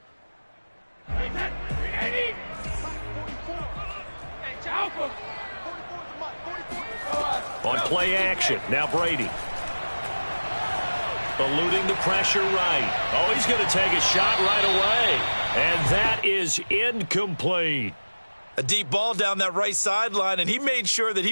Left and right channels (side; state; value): both; inverted; correlation -1.00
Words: On play action, now Brady. Eluding the pressure right. Oh, he's going to take a shot right away. And that is incomplete. A deep ball down that right sideline, and he made sure that